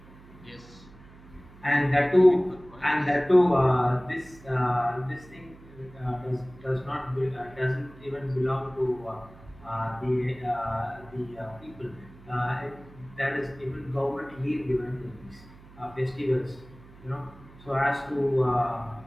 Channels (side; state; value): right; noise; hum, 22 dB below the sound